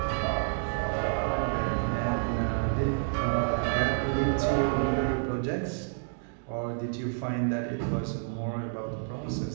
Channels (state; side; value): silent; left; digital silence